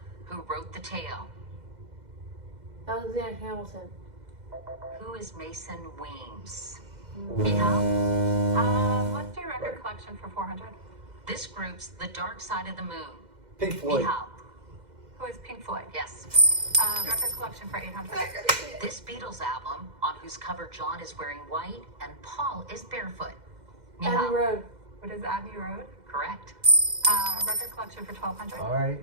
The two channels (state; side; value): late; left; 2.0 ms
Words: who wrote the tale. Alexander Hamilton. Who is Mason Weems? Mihal? Let's do record collection for 400. This group's The Dark Side of the Moon. Pink Floyd. Mihal? Who is Pink Floyd? Yes. Record collection for 800. This Beatles album, on whose cover John is wearing white and Paul is barefoot. Abbey Mihal? Road. What is Abbey Road? Correct. Record collection for 1200.